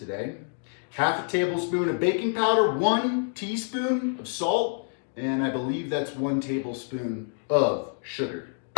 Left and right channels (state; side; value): silent; right; digital silence